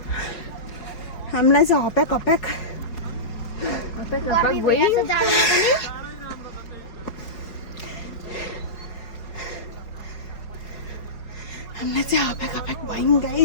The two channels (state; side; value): late; right; 4.8 ms